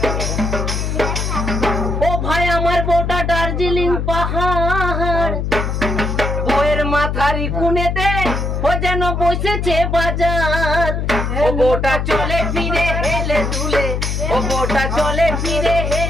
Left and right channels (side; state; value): left; noise; hum, 1 dB below the sound